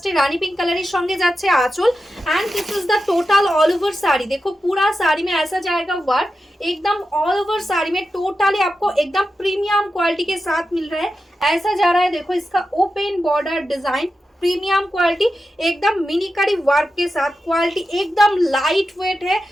রানী পিঙ্ক কালারের সঙ্গে যাচ্ছে আঁচল। And this is the total all over sari. देखो पूरा साड़ी में ऐसा जाएगा वर्क, एकदम ऑल ओवर साड़ी में टोटली आपको एकदम प्रीमियम क्वालिटी के साथ मिल रहा है। ऐसा जा रहा है, देखो इसका open border design, premium quality, एकदम मिनीकारी वर्क के साथ। क्वालिटी एकदम लाइट वेट है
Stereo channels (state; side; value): normal; both; correlation 0.90